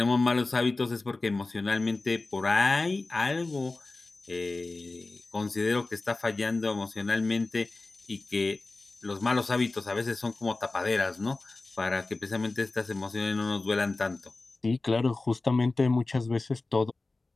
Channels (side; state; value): right; quieter; 3.4 dB